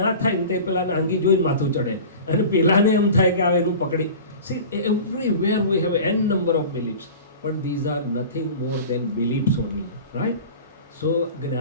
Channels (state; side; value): inverted; both; correlation -0.37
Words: ના થાય ને તે પેલાને આંગી જોઈને માથું ચડે અને પેલાને એમ થાય કે આવે એનું પકડી. See, everywhere we have n number of beliefs, but these are nothing more than beliefs only, right? So,